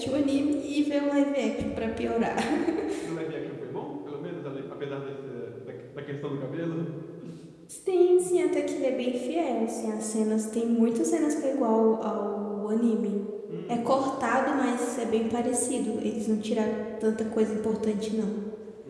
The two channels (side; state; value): both; identical; correlation 1.00